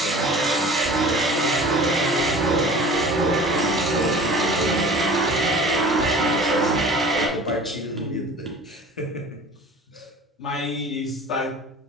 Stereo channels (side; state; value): both; normal; correlation 0.42